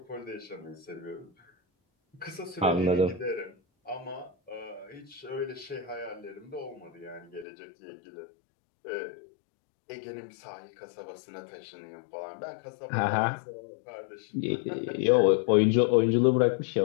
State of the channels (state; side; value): drops out; right; at 7.5 s